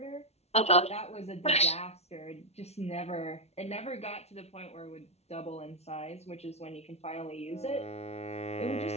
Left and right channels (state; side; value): late; right; 0.31 ms